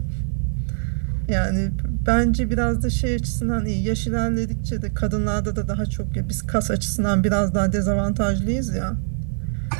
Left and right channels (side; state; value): left; silent; 64 dB below the other